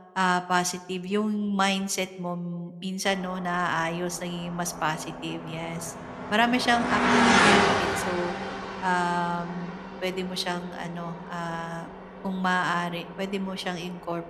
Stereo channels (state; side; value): identical; both; correlation 1.00